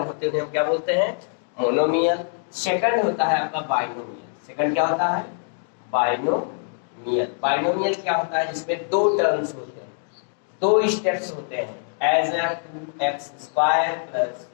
होते हैं हम क्या बोलते हैं? मोनोमियल। सेकंड होता है आपका बाइनोमियल। सेकंड क्या होता है? बाइनोमियल। बाइनोमियल क्या होता है? जिसमें दो टर्म्स होते हैं, दो स्टेप्स होते हैं, एज 2x² प्लस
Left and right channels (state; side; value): silent; right; 63 dB below the other